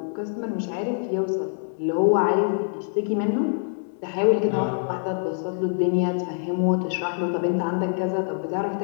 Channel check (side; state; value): right; silent; digital silence